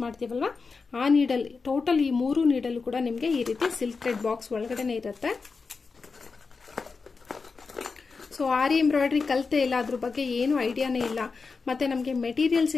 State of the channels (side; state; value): right; quieter; 4.6 dB